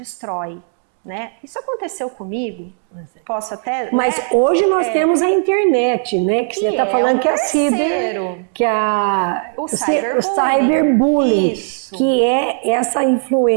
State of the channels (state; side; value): silent; left; 63 dB below the other